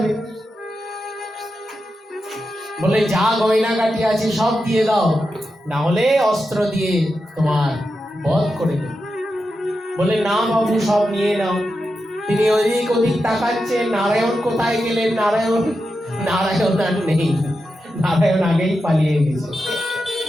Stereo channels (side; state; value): both; normal; correlation 0.89